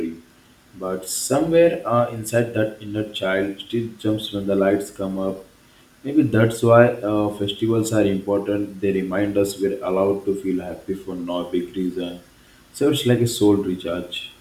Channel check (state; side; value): identical; both; correlation 1.00